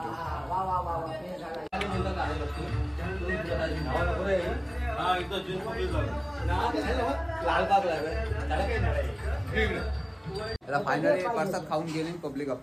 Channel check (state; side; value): identical; both; correlation 1.00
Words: त्याला फायनली प्रसाद खाऊन गेले पब्लिक